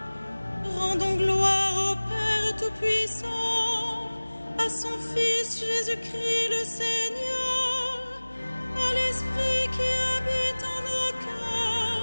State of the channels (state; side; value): inverted; both; correlation -1.00